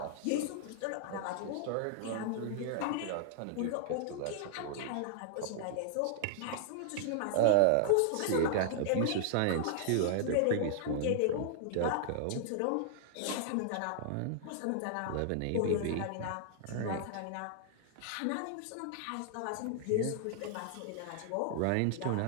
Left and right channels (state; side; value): different; both; correlation -0.01